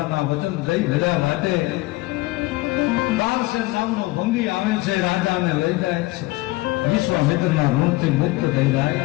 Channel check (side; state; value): right; quieter; 21.2 dB